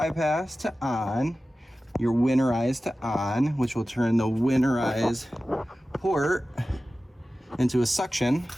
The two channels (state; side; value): normal; both; correlation 0.95